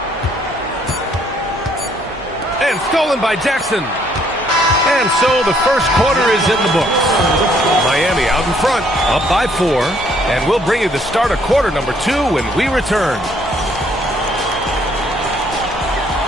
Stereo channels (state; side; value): normal; both; correlation 0.66